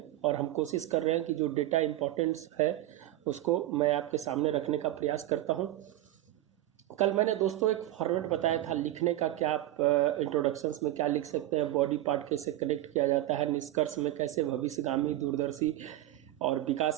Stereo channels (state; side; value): quieter; left; 14.6 dB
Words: और हम कोशिश कर रहे हैं कि जो डेटा इंपॉर्टेंस है उसको मैं आपके सामने रखने का प्रयास करता हूं। कल मैंने दोस्तों एक फॉर्मेट बताया था लिखने का, क्या आप इंट्रोडक्शंस में क्या लिख सकते हैं, बॉडी पार्ट कैसे कनेक्ट किया जाता है, निष्कर्ष में कैसे भविष्यगामी दूरदर्शी और